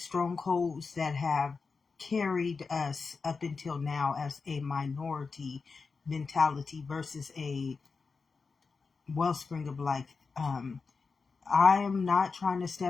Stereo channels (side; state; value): right; quieter; 4.7 dB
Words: that have carried us up until now as a minority mentality versus a wellspring of life. I am not trying to